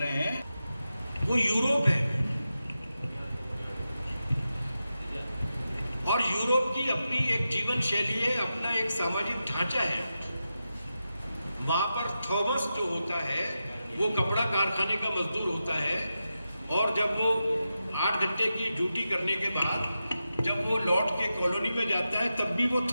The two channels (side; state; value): both; inverted; correlation -0.90